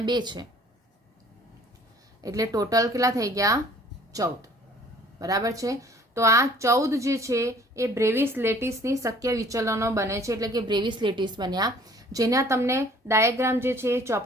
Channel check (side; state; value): both; normal; correlation 0.53